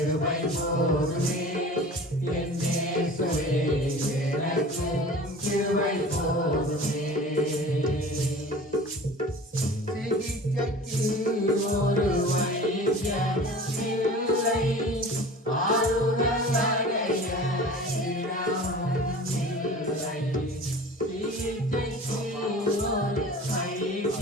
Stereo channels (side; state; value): both; normal; correlation 0.40